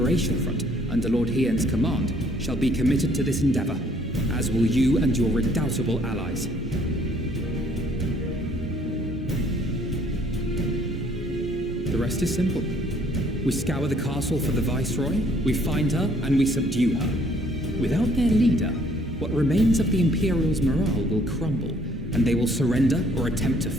Front, under Lord Hien's command, shall be committed to this endeavor, as will you and your redoubtable allies. The rest is simple. We scour the castle for the Viceroy, we find her, and we subdue her. Without their leader, what remains of the Imperials' morale will crumble, and they will surrender or attempt to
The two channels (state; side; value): normal; both; correlation 0.62